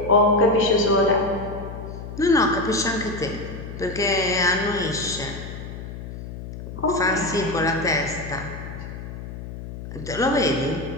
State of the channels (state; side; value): noise; left; hum, 10 dB below the sound